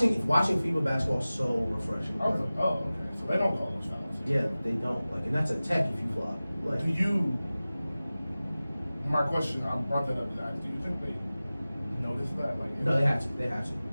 FIBA basketball is so refreshing. I was like, oh, okay. So they don't call those fouls. Yeah, they don't. Like, and that's a tech if you flop. Like, Do you? My question, I brought that up to ask. Do you think they notice that? Like, no, they have to. They have to.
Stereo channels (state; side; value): inverted; both; correlation -0.97